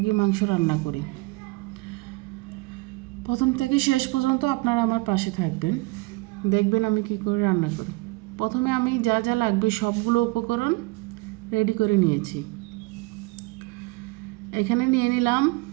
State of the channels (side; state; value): left; quieter; 24.6 dB